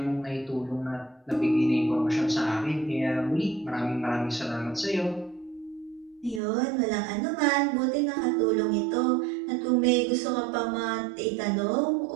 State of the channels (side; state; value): left; drops out; at 6.4 s